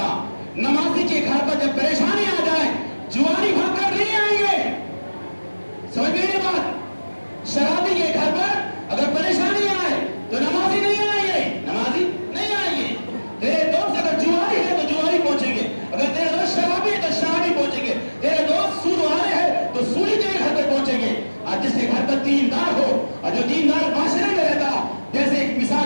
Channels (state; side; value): inverted; both; correlation -1.00